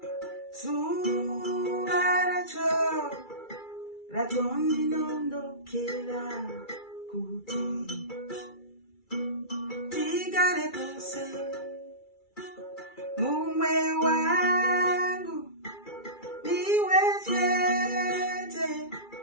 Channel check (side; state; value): right; late; 2.3 ms